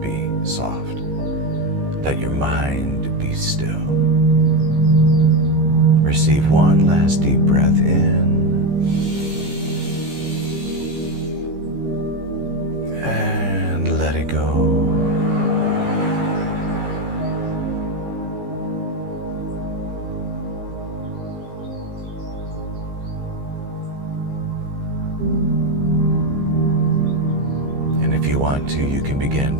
be soft. Let your mind be still. Receive one last deep breath in. And let it go. And if you want to, you can begin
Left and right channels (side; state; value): left; late; 15 ms